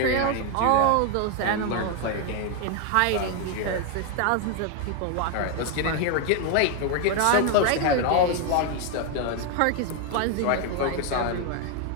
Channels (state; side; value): different; both; correlation 0.01